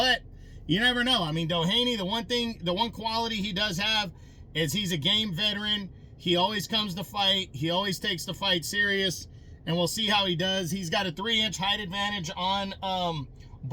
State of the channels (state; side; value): identical; both; correlation 1.00